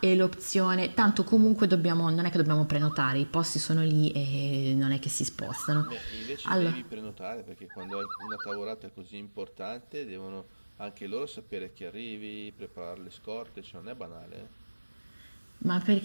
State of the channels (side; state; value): both; inverted; correlation -1.00